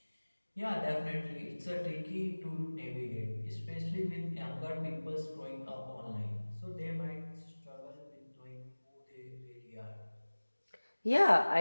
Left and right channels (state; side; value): inverted; both; correlation -1.00